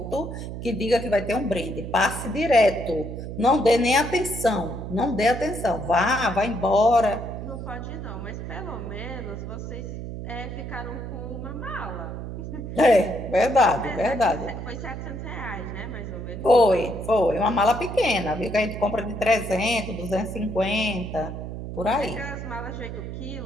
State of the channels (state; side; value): noise; right; hum, 7 dB below the sound